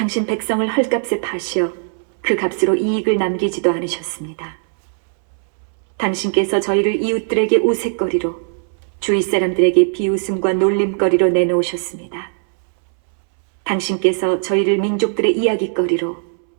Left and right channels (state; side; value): silent; left; 67 dB below the other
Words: 백성을 헐값에 파시어 그 값으로 이익을 남기지도 않으셨습니다. 당신께서 저희를 이웃들에게 우윳거리로 주위 사람들에게 비웃음과 놀림거리로 내놓으셨습니다. 당신께서 저희를 민족들의 이야기거리로